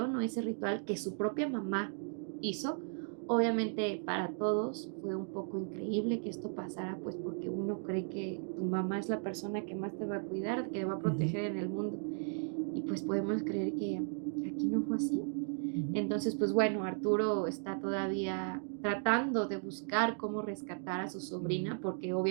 o ese ritual que su propia mamá hizo? Obviamente para todos fue un poco increíble que esto pasara, pues porque uno cree que tu mamá es la persona que más te va a cuidar, que te va a Ujú. proteger en el mundo. Y pues podemos creer que aquí no fue así. Ujú. Entonces, pues bueno, Arturo está todavía tratando de buscar cómo rescatar a su sobrina, porque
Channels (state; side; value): silent; left; 54 dB below the other